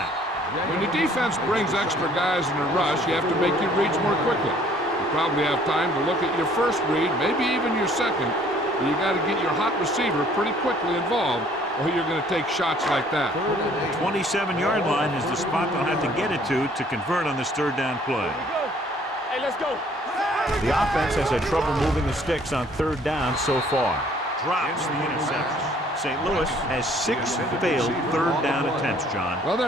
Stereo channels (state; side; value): normal; both; correlation 0.59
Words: When the defense brings extra guys in a rush, you have to make your reads more quickly. You probably have time to look at your first read, maybe even your second, but you got to get your hot receiver pretty quickly involved, or you're going to take shots like that. 27-yard line is the spot they'll have to get it to convert on this 3rd down play. Hey, let's go. The offense has had trouble moving the sticks on 3rd down so far. Drops the interception. St. Louis has 6 failed 3rd down attempts, John. Well,